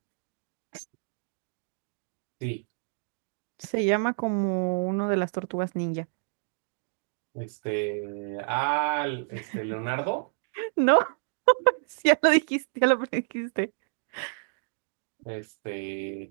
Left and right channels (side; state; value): left; silent; digital silence